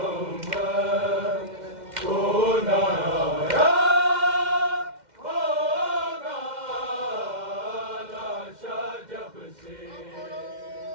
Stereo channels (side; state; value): left; late; 2.1 ms